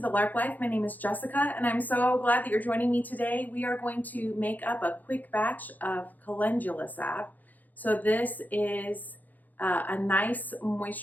Lark Life. My name is Jessica and I'm so glad that you're joining me today. We are going to make up a quick batch of Calendula Salve. So this is a nice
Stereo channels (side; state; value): right; late; 0.083 ms